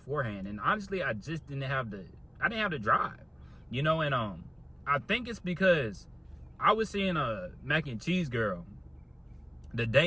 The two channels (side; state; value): both; identical; correlation 1.00